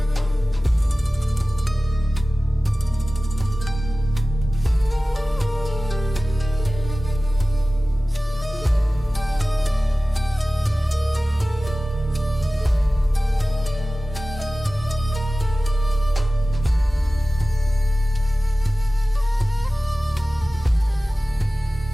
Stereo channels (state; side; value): normal; both; correlation 0.97